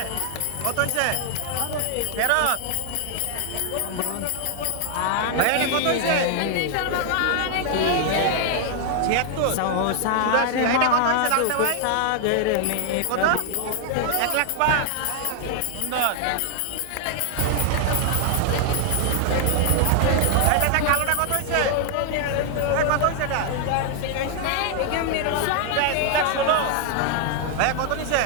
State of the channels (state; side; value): different; both; correlation 0.00